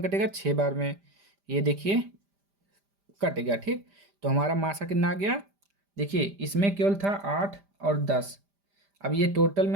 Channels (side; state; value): left; late; 5.0 ms